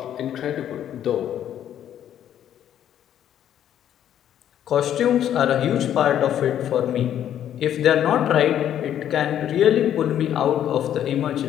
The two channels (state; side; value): quieter; right; 10.5 dB